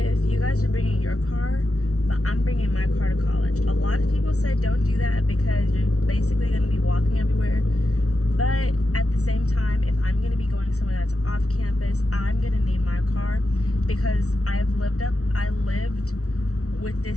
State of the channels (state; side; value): late; right; 0.65 ms